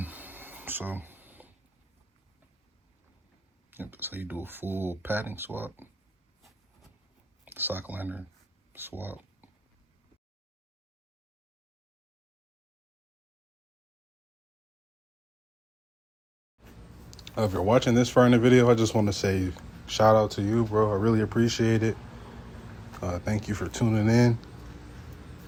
So, yep, that's how you do a full padding swap. Sock liner swap. If you're watching this far in the video, I just want to say shout out to you, bro. I really appreciate it. Thank you for tuning in.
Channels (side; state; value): both; normal; correlation 0.98